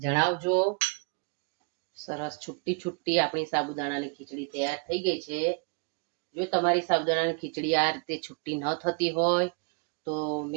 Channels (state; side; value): quieter; left; 34.6 dB